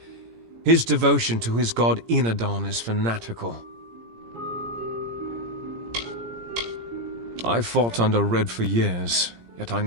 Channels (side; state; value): left; late; 17 ms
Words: His devotion to his god Enadon is fanatical. I fought under Red for years, yet I